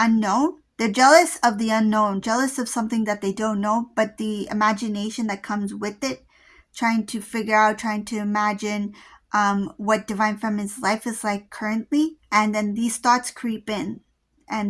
they're jealous of the unknown, jealous of something that they don't know, but the imagination that comes with it, trying to figure out, trying to imagine what divine feminine's life is like currently, and then these thoughts creep in,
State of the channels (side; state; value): both; identical; correlation 1.00